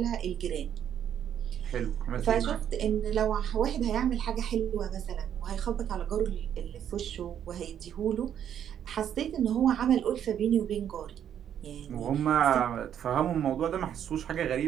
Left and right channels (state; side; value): quieter; left; 9.5 dB